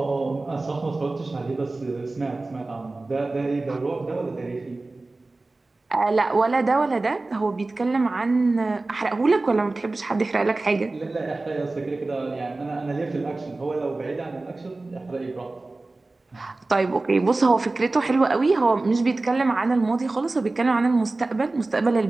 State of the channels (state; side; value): quieter; left; 3.2 dB